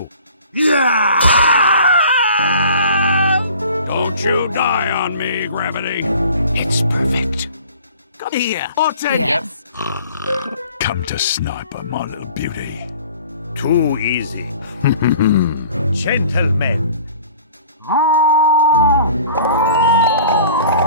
Don't you die on me, Gravity. It's perfect. Come here. I'll take Yes. Come to sniper, my little beauty. Too easy. Gentlemen.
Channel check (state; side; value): inverted; both; correlation -0.48